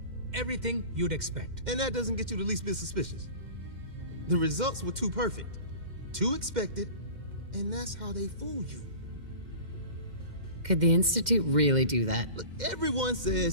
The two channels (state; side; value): late; left; 2.1 ms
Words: Everything you'd expect. And that doesn't get you the least bit suspicious. The results were too perfect, too expected, and that's how they fool you. Could the Institute really do that? Look, everyone